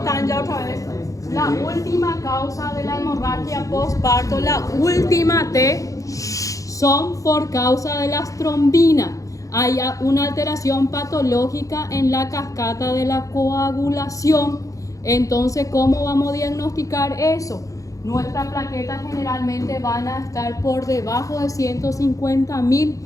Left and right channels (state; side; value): late; right; 0.16 ms